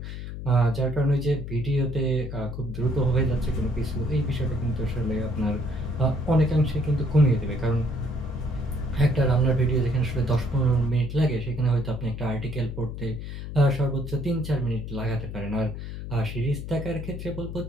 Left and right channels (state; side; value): noise; left; hum, 8 dB below the sound